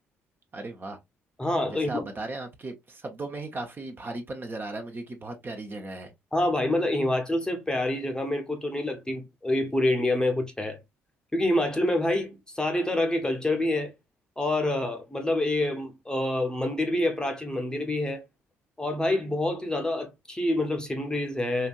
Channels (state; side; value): normal; both; correlation 0.85